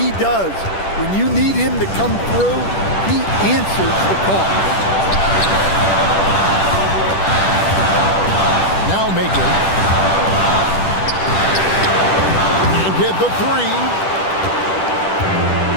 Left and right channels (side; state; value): right; late; 10 ms